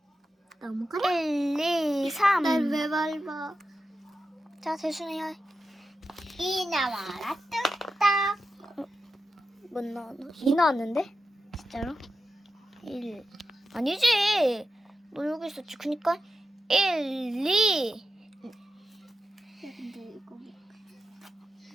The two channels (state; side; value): normal; both; correlation 0.90